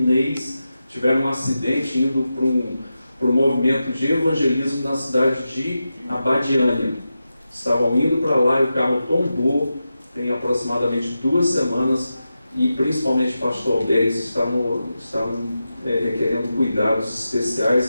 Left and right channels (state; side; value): inverted; both; correlation -0.91